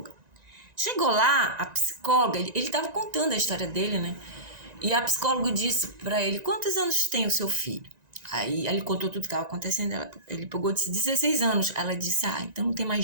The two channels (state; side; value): late; left; 1.9 ms